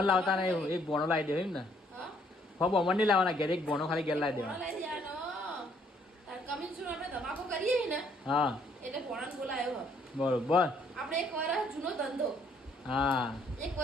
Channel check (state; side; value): normal; both; correlation 0.66